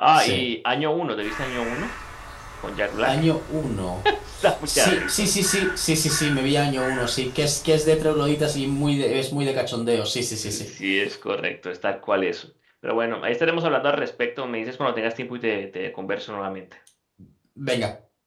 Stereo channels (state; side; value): identical; both; correlation 1.00